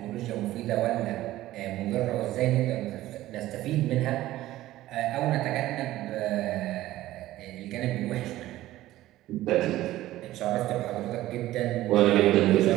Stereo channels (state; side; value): quieter; left; 15.4 dB